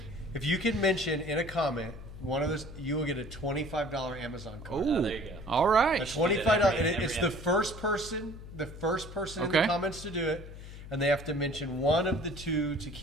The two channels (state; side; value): noise; left; hum, 13 dB below the sound